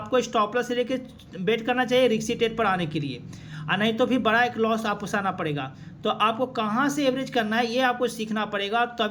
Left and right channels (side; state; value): both; identical; correlation 1.00